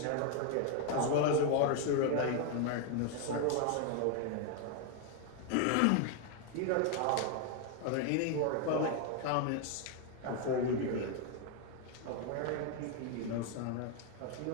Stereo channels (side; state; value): both; different; correlation 0.01